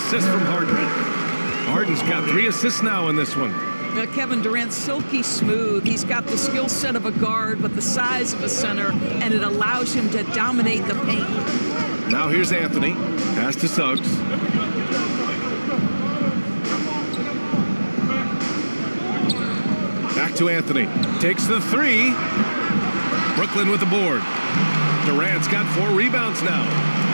from Harden. Harden's got 3 assists now in this one. Kevin Durant's silky smooth. He's got the skill set of a guard, but the size of a center, and it allows him to dominate the paint. Now here's Anthony. Pass to Suggs. Back to Anthony. Takes the 3. Brooklyn with the board. Durant's got 4 rebounds now.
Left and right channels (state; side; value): inverted; both; correlation -1.00